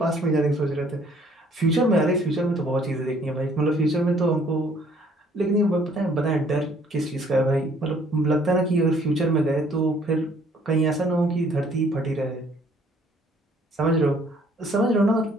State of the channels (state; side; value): normal; both; correlation 0.60